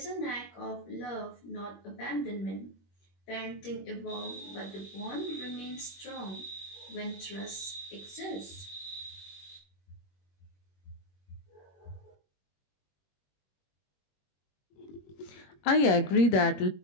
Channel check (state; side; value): late; right; 21 ms